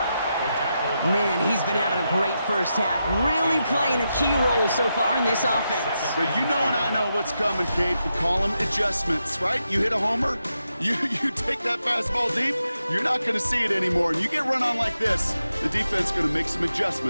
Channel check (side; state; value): both; inverted; correlation -0.86